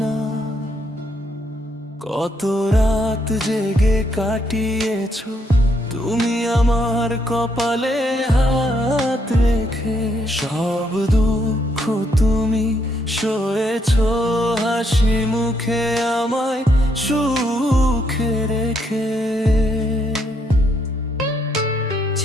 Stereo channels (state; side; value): normal; both; correlation 0.74